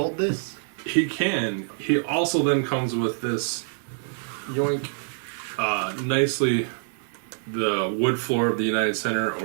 this? He can. He also then comes with this yoink, nicely the wood floor of the United Center,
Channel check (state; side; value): silent; left; digital silence